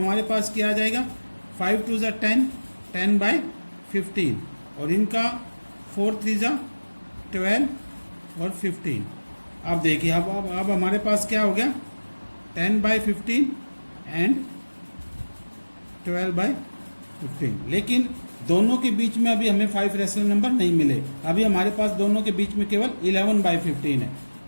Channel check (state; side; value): inverted; both; correlation -1.00